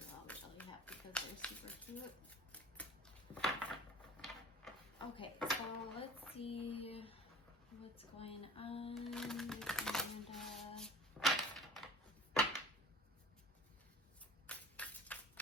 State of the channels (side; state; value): both; normal; correlation 0.41